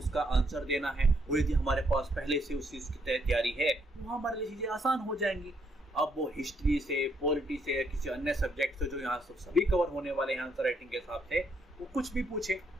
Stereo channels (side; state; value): both; normal; correlation 0.74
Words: आंसर देना है। और यदि हमारे पास पहले से उस चीज़ की तैयारी है तो हमारे लिए चीज़ें आसान हो जाएंगी। अब वो हिस्ट्री से, पॉलिटी से या किसी अन्य सब्जेक्ट से जो यहाँ सभी कवर होने वाले हैं आंसर राइटिंग के हिसाब से, वो कुछ भी पूछे,